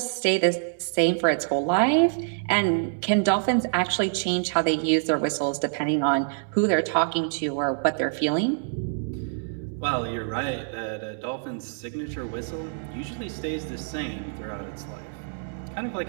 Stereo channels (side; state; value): left; silent; 61 dB below the other